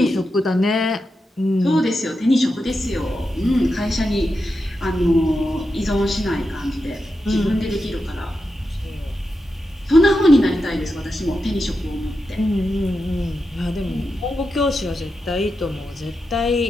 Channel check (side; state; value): both; normal; correlation 0.88